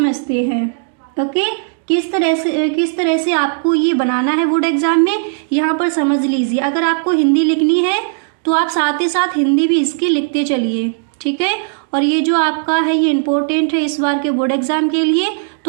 हैं। ओके, किस तरह से आपको ये बनाना है बोर्ड एग्जाम में, यहाँ पर समझ लीजिए। अगर आपको हिंदी लिखनी है तो आप साथ ही साथ हिंदी भी इसकी लिखते चलिए। ठीक है, और ये जो आपका है ये इम्पोर्टेंट है इस बार के बोर्ड एग्जाम के लिए,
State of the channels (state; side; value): silent; left; digital silence